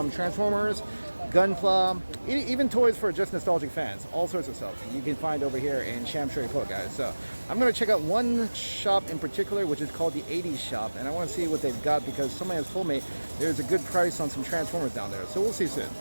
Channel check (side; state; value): both; inverted; correlation -1.00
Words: Transformers, Gunpla, even toys for just nostalgic fans. All sorts of stuff you can find over here in Sham Shui Po, guys. So I'm going to check out one shop in particular which is called the 80s shop, and I want to see what they've got because somebody has told me there's a good price on some Transformers down there. So we'll see soon.